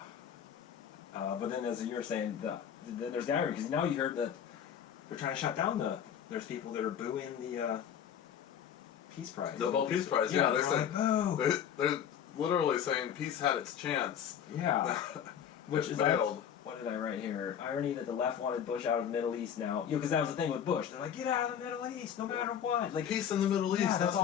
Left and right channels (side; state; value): right; quieter; 8.9 dB